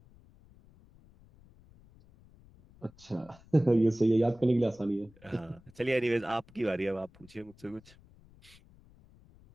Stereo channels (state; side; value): noise; left; rumble, 26 dB below the sound